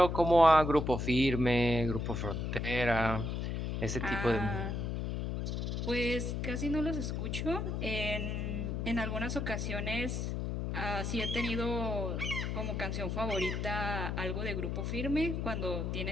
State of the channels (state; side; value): noise; left; hum, 2 dB below the sound